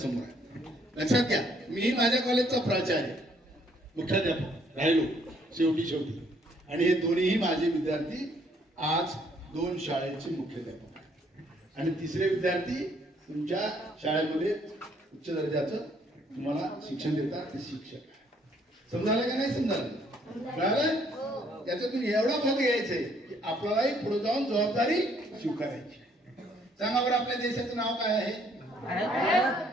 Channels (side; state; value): both; normal; correlation 0.66